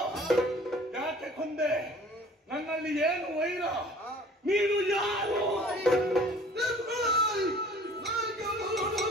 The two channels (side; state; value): both; normal; correlation 0.49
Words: ಯಾಕೆ ಕೊಂದೆ? ನನ್ನಲ್ಲಿ ಏನು ವೈರ? ನೀನು ಯಾರು?